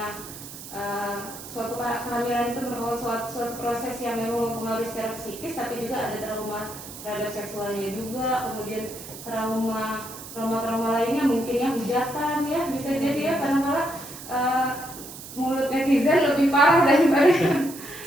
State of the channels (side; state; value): right; noise; hiss, 13 dB below the sound